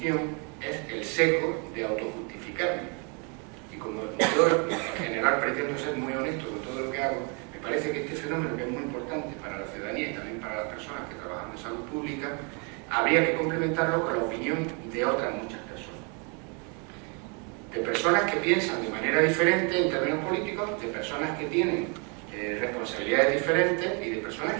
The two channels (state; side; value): quieter; left; 35.1 dB